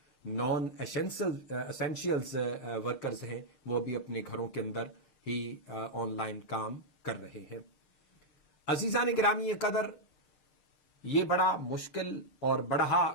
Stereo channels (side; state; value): right; late; 6.6 ms